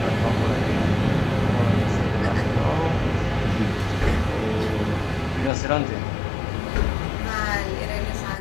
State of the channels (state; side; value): drops out; right; at 5.5 s